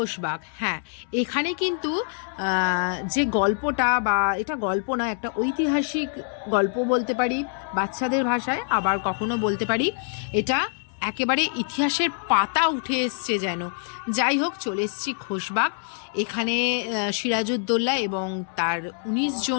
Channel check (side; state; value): right; silent; 62 dB below the other